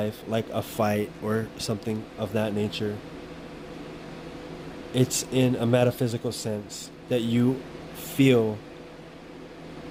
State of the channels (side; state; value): both; identical; correlation 1.00